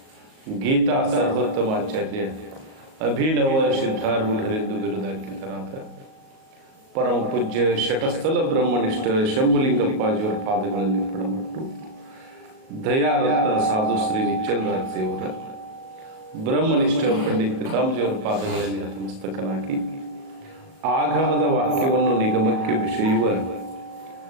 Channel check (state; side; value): late; left; 37 ms